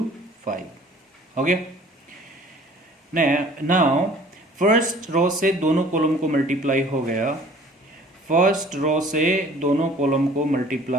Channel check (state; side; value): normal; both; correlation 0.51